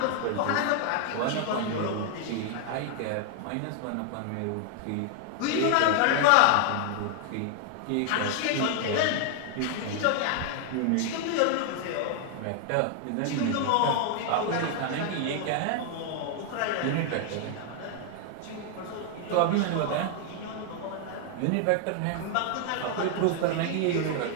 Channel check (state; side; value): different; both; correlation 0.00